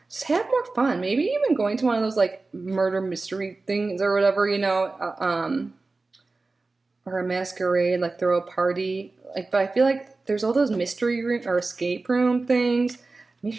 Just have more fun. Maybe even going to one of those like murder mystery things or whatever, or a masquerade, like throw a party. Like, but I feel like there's all those mystery room or escape room things.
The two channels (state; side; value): quieter; left; 3.6 dB